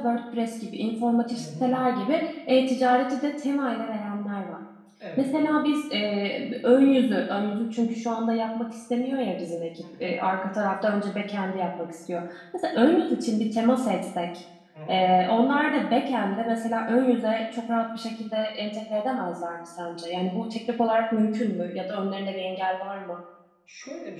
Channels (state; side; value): identical; both; correlation 1.00